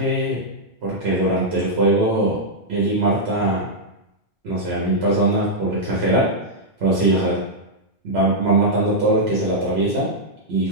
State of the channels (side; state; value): both; normal; correlation -0.06